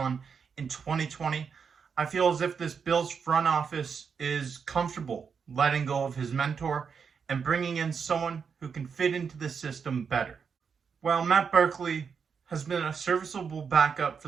in 2020, I feel as if this Bills front office is comfortable letting go of his mentor and bringing in someone who can fit into the system better. While Matt Barkley has been a serviceable backup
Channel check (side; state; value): left; quieter; 6.2 dB